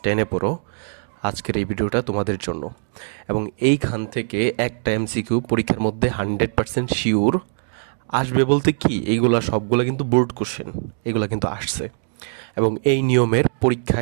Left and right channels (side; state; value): left; silent; digital silence